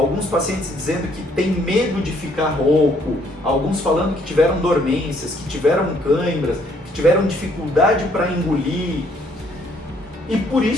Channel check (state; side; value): normal; both; correlation 0.66